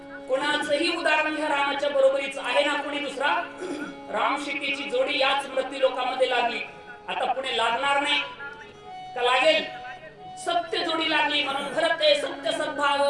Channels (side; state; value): both; identical; correlation 1.00